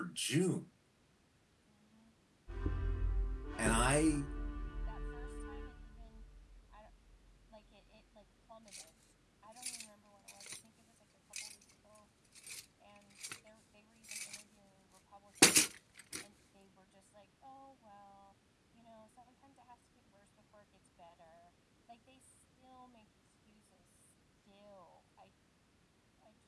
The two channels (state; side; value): identical; both; correlation 1.00